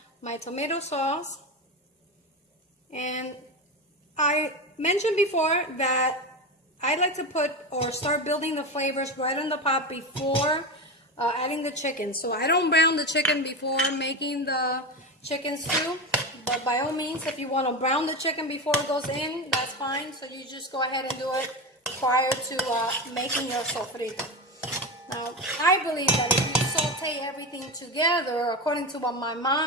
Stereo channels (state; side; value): normal; both; correlation 0.20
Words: my tomato sauce. And I mentioned before that I like to put or start building the flavors right in the pot before adding the chicken. So I don't brown the chicken before making the chicken stew, but by all means, if you want to brown the chicken before it goes in, that's fine. So you just go ahead and do it prior to making your sofrito. Now, I believe that if you saute everything together, according to what my